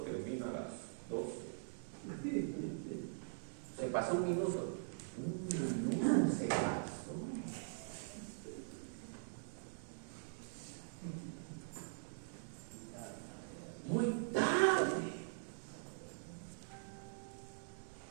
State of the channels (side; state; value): left; silent; digital silence